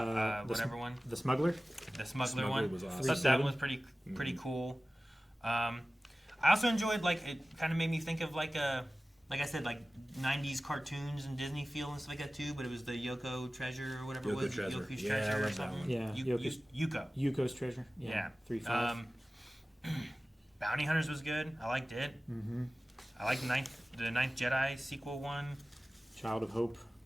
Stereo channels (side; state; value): both; normal; correlation 0.97